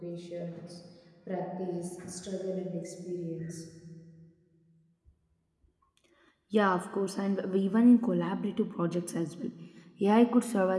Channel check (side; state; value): both; identical; correlation 1.00